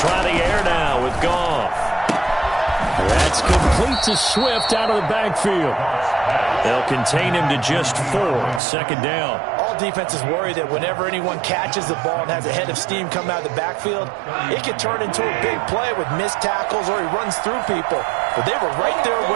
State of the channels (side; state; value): left; drops out; at 8.6 s